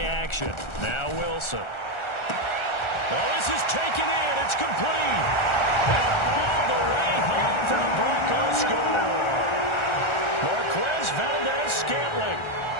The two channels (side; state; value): right; late; 1.4 ms